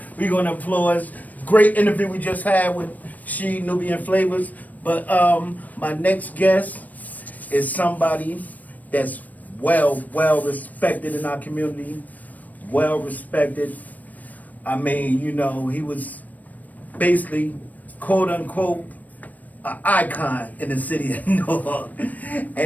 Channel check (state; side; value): late; right; 0.078 ms